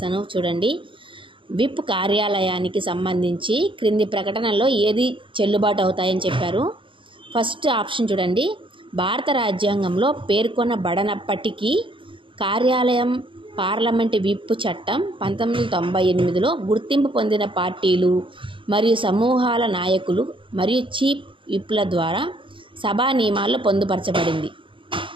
చూడండి, విప్ కార్యాలయానికి సంబంధించి క్రింది ప్రకటనల్లో ఏది చెల్లుబాటు అవుతాయని చెప్పారు. ఫస్ట్ ఆప్షన్ చూడండి, భారత రాజ్యాంగంలో పేర్కొనబడనప్పటికీ కార్యాలయం పార్లమెంటు విప్ చట్టం 1998లో గుర్తింపు పొందిన పార్టీలు మరియు సమూహాల నాయకులు మరియు చీఫ్ విప్ల ద్వారా సభా నియమాల్లో పొందుపరచబడింది.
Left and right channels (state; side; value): late; left; 0.25 ms